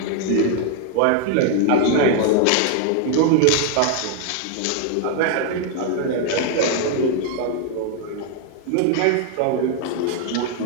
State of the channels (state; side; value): different; both; correlation 0.00